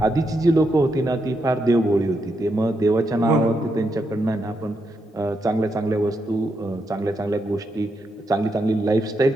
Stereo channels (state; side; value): normal; both; correlation 0.82